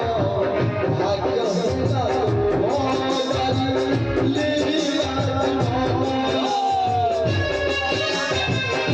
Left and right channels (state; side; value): identical; both; correlation 1.00